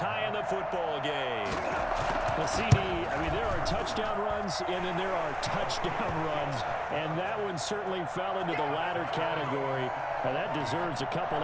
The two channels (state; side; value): identical; both; correlation 1.00